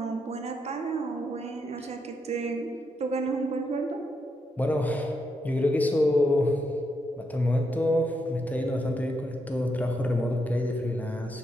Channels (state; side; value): normal; both; correlation 0.81